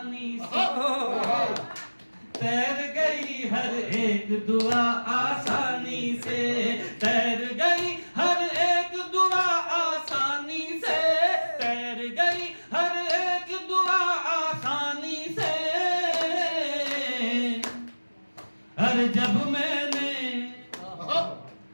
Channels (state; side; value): inverted; both; correlation -1.00